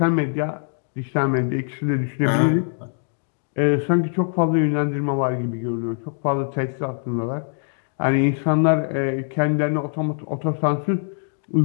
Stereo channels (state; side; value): silent; right; 64 dB below the other